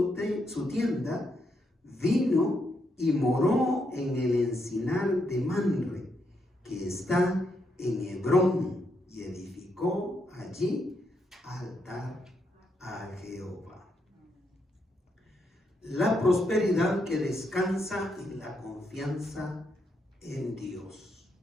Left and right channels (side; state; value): both; normal; correlation 0.79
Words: tienda, vino y moró en el encinar de Manre, que está en Hebrón, y edificó allí altar a Jehová. La prosperidad que descansa en la confianza en Dios.